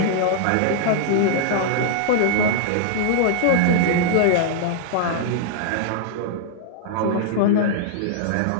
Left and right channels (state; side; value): different; both; correlation -0.01